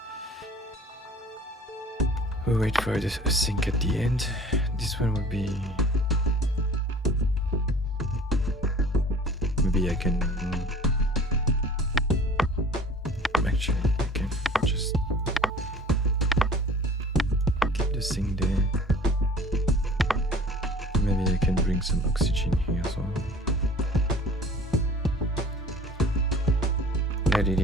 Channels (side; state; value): both; normal; correlation 0.47